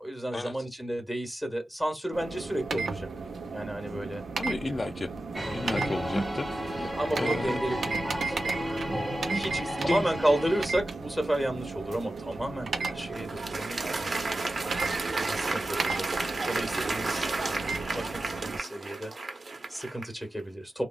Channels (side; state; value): both; normal; correlation 0.93